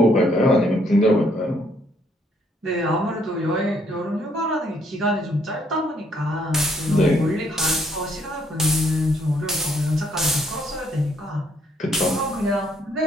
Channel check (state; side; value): normal; both; correlation 0.68